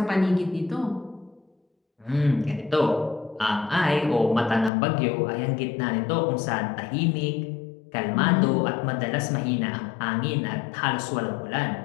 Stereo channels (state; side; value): drops out; right; at 4.7 s